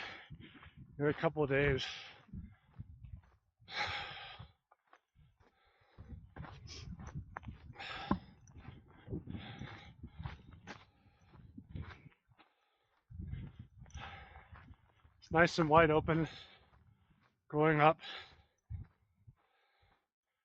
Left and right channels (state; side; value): identical; both; correlation 1.00